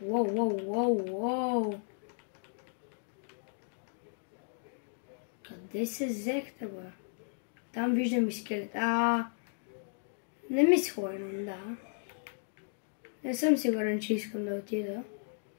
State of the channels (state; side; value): silent; right; digital silence